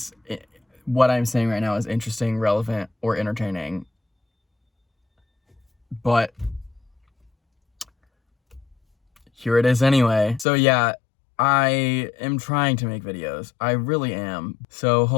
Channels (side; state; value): right; drops out; at 10.5 s